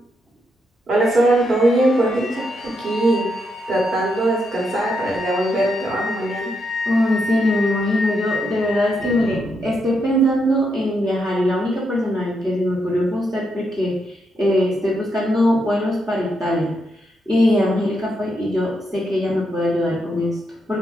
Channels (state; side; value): normal; both; correlation 0.81